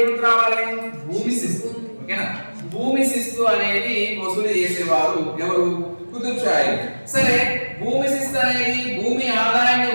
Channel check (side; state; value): both; inverted; correlation -1.00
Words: గుర్తు రావాలి? భూమి శిస్తు. ఓకేనా, భూమి శిస్తు అనేది వసూలు చేసేవారు ఎవరు? కుతుబ్ షాహీ. సరే, భూమి శిస్తు అనేది భూమి ఆదాయాన్ని